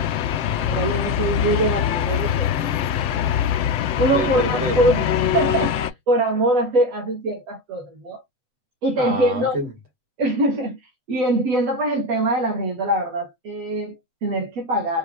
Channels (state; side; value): late; left; 7.6 ms